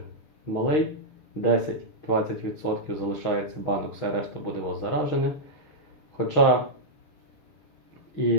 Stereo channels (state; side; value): late; right; 6.4 ms